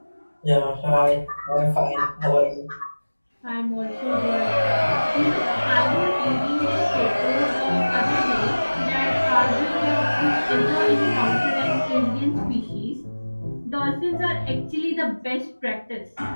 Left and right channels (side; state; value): both; inverted; correlation -1.00